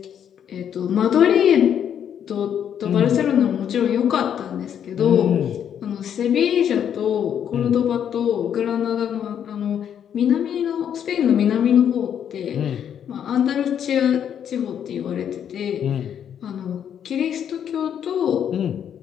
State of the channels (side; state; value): right; quieter; 8.9 dB